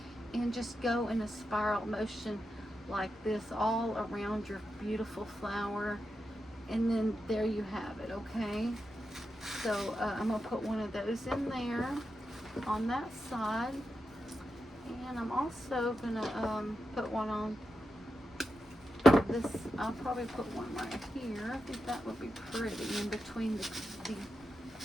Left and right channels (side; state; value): both; normal; correlation 0.88